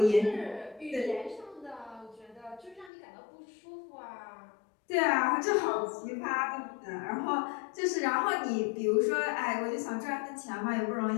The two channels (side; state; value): right; drops out; at 2.9 s